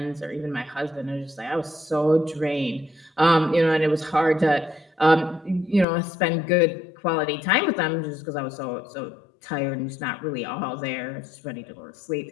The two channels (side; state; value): right; drops out; at 5.9 s